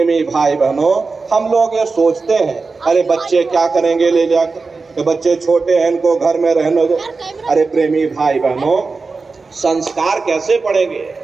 भाई बहनों, हम लोग ये सोचते हैं, अरे बच्चे क्या करेंगे ले जाकर, तो बच्चे छोटे हैं इनको घर में रहने दो। अरे प्रेमी भाई बहनों, संस्कार कैसे पढ़ेंगे?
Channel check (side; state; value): left; quieter; 4.2 dB